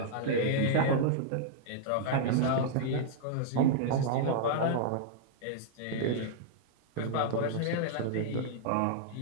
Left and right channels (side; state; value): both; different; correlation -0.01